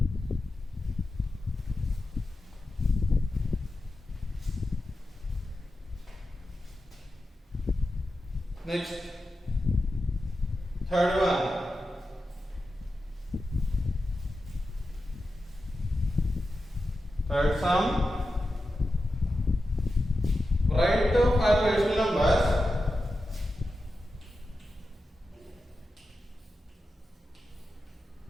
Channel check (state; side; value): normal; both; correlation 0.91